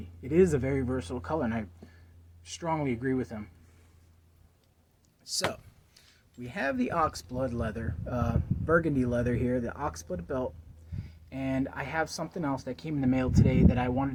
It is a very versatile color, and I strongly agree with him. So, we have the Oxblood leather, Burgundy leather here, the Oxblood belt, and I have something else that came in the mail today that I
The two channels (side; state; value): both; identical; correlation 1.00